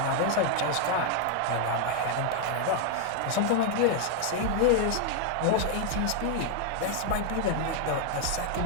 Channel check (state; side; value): different; both; correlation 0.00